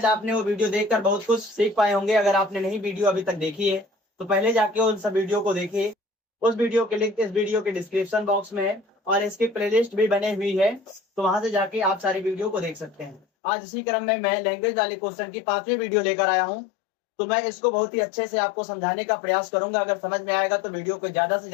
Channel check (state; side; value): drops out; right; at 13.2 s